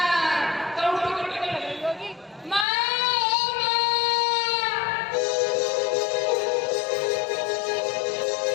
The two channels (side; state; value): right; drops out; at 2.7 s